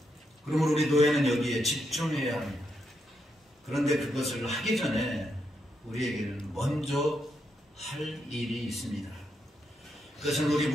그러므로 우리 노예는 여기에 집중해야 합니다. 그런데 그것을 하기 전에 우리에게는 먼저 할 일이 있습니다. 그것은 우리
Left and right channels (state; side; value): normal; both; correlation 0.81